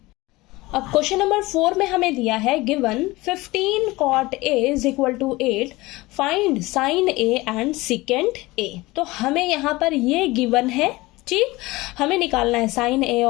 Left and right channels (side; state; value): right; quieter; 20.8 dB